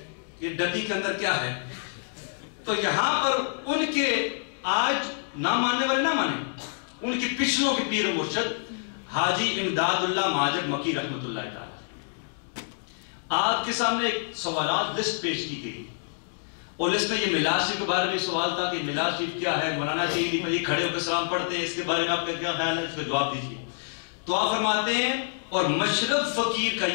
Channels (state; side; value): silent; right; digital silence